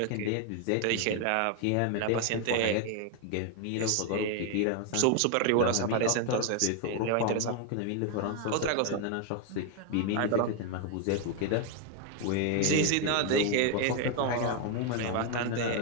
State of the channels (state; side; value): different; both; correlation 0.01